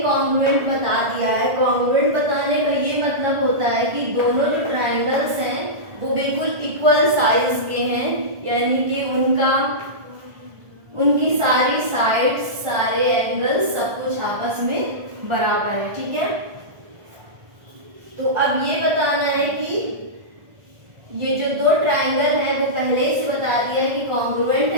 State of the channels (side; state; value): left; late; 1.4 ms